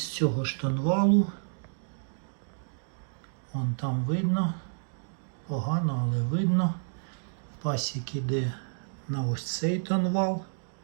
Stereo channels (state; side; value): silent; left; digital silence